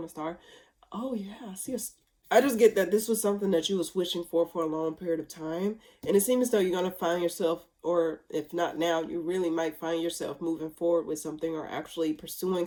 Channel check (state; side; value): identical; both; correlation 1.00